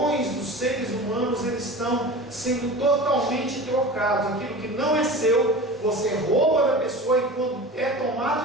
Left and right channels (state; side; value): normal; both; correlation 0.34